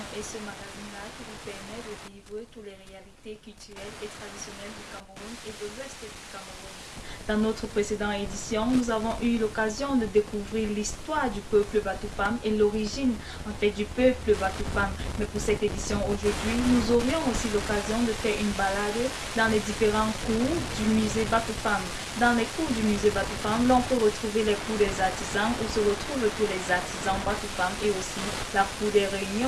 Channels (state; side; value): identical; both; correlation 1.00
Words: est ce magazine-là qui vous permet de vivre toutes les réalités culturelles et traditionnelles du Cameroun et de l'Ouest du Cameroun. Dans notre précédente édition, nous avons eu l'occasion de découvrir l'histoire du peuple Batoufam et l'origine du peuple Batoufam. Mais pour cette édition aujourd'hui, nous aurions aussi l'occasion de faire une balade dans les différents cours du musée Batoufam. Dans les cours du musée Batoufam, l'on peut retrouver les cours des artisans où se retrouvent tous les artisans Batoufam et aussi la cour des